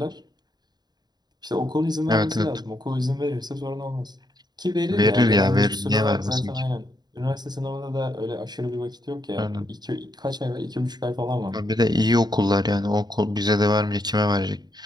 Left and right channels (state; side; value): late; left; 0.20 ms